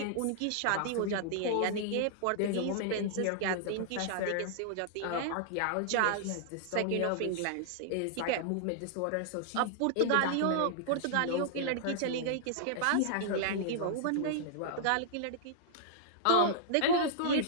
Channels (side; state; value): both; different; correlation -0.02